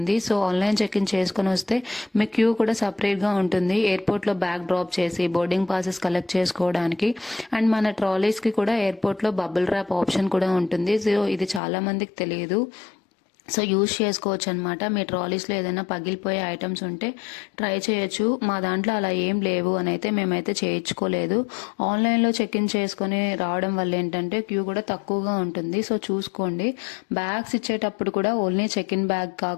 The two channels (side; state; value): right; drops out; at 11.6 s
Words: సో ఆన్లైన్ చెక్ ఇన్ చేసుకుని వస్తే మీ క్యూ కూడా సపరేట్గా ఉంటుంది. ఎయిర్పోర్ట్లో బ్యాగ్ డ్రాప్ చేసి బోర్డింగ్ పాసెస్ కలెక్ట్ చేసుకోవడానికి అండ్ మన ట్రాలీస్కి కూడా ఎయిర్పోర్ట్లో బబుల్ ర్యాప్ ఆప్షన్ కూడా ఉంటుంది. సో ఇది చాలా మందికి తెలియదు. సో యూజ్ చేసుకోవచ్చు అనమాట. మీ ట్రాలీస్లో ఏదైనా పగిలిపోయే ఐటమ్స్ ఉంటే ట్రై చేయొచ్చు. మా దాంట్లో అలా ఏం లేవు అని అయితే మేమైతే చేయించుకోలేదు. ఆన్లైన్లో చెక్ ఇన్ చేసుకొని రావడం వల్ల ఏంటంటే క్యూ కూడా తక్కువగా ఉంటుంది. సో చూసుకోండి. బ్యాగ్స్ ఇచ్చేటప్పుడు కూడా ఓన్లీ చెక్ ఇన్ బ్యాగ్